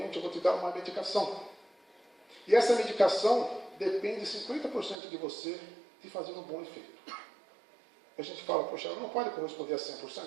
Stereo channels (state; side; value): drops out; left; at 5.0 s